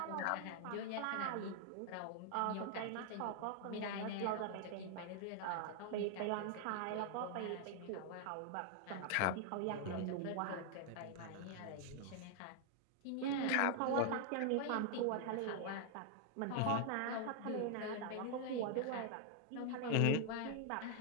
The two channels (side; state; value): both; different; correlation 0.00